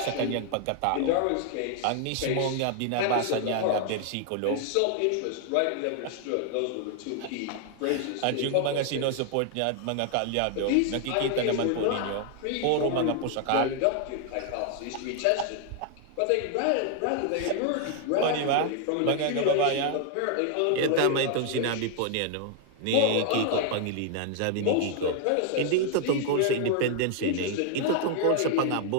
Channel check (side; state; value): both; different; correlation 0.00